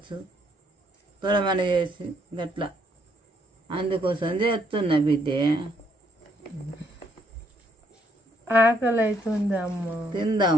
తొడమని చేసి గట్లా. అందుకోసం చేస్తున్నా బిడ్డే. ఆకలి అవుతుంది అమ్మ.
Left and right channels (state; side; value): normal; both; correlation 0.71